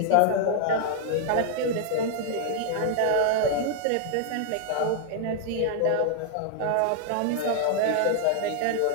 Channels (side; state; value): both; different; correlation 0.00